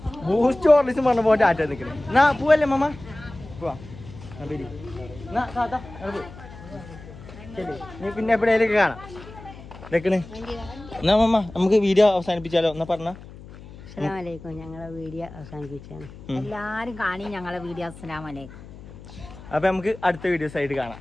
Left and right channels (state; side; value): noise; left; hum, 17 dB below the sound